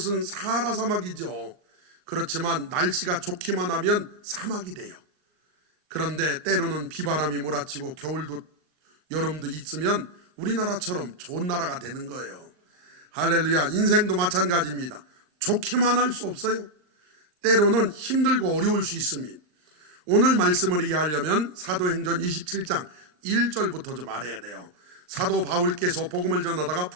사하라 사막이죠. 그렇지만 날씨가 좋기만 하면 사막이 돼요. 그런데 때로는 비바람이 몰아치고 겨울도 여름도 있으면 우리나라처럼 좋은 나라가 되는 거예요. 할렐루야. 인생도 마찬가지입니다. 좋기만 할 수 없어요. 때로는 힘들고 어려울 수 있습니다. 오늘 말씀을 이해하려면 사도행전 27장 1절부터 좀 알아야 돼요. 사도 바울께서 복음을 전하다가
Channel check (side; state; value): left; late; 39 ms